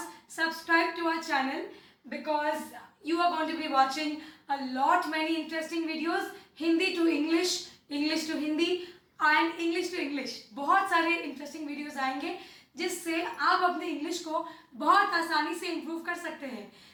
subscribe to our channel because you are going to be watching a lot many interesting videos, Hindi to English, English to Hindi and English to English। बहुत सारे interesting videos आएंगे जिससे आप अपने English को बहुत आसानी से इम्प्रूव कर सकते हैं।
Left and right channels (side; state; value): both; identical; correlation 1.00